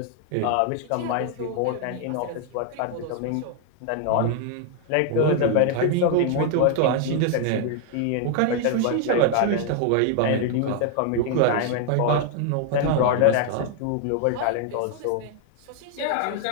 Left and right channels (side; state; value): both; different; correlation 0.00